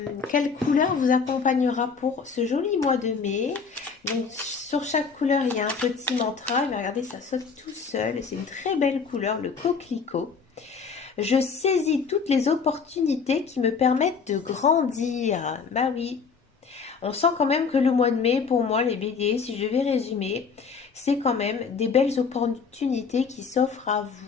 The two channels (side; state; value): right; quieter; 5.5 dB